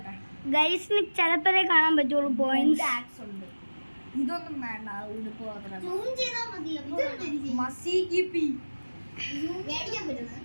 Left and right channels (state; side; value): inverted; both; correlation -1.00